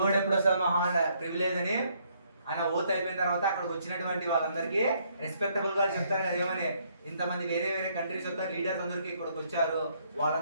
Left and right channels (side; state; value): both; inverted; correlation -0.69